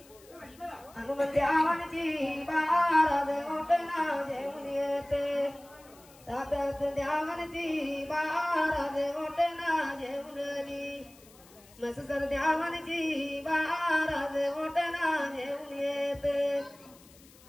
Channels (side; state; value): left; noise; hiss, 25 dB below the sound